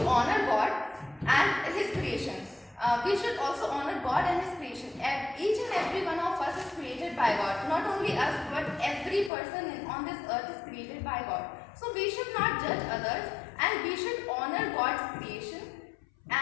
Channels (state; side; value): drops out; right; at 9.3 s